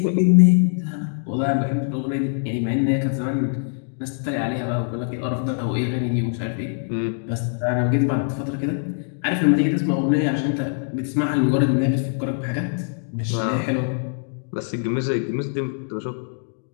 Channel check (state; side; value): silent; right; digital silence